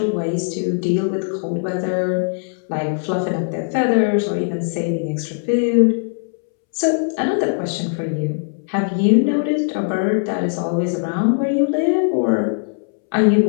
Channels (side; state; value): right; silent; 66 dB below the other